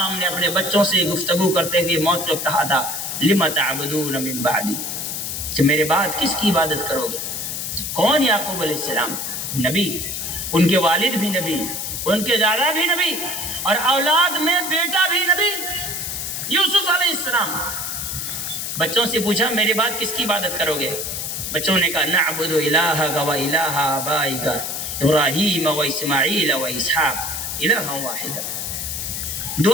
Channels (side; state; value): left; noise; hiss, 4 dB below the sound